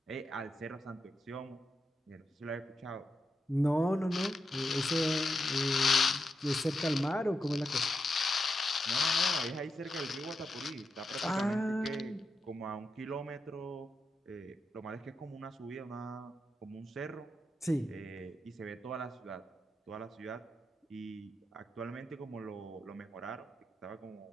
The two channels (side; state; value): both; normal; correlation 0.86